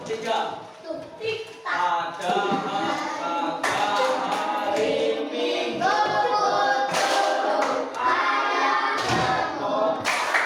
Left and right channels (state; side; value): identical; both; correlation 1.00